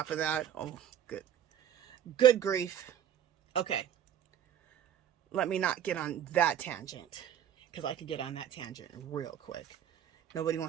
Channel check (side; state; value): left; quieter; 9.9 dB